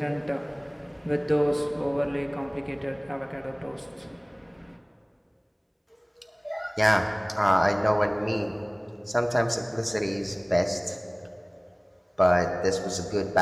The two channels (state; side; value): identical; both; correlation 1.00